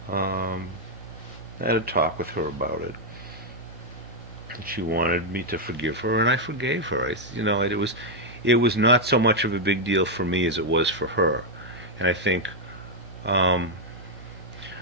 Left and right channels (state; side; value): normal; both; correlation -0.01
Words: I had a talk with her about it. She wanted me to forgive her, and I forgave her. It was not so much of a big deal for me as it was for her, and I think